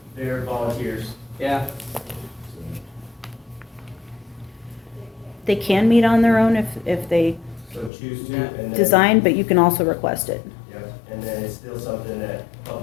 They're volunteers. Yeah, They can meet on their own if they So choose to, and then. design, but you can also request it. Yep, and then it's still something that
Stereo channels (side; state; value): right; drops out; at 7.9 s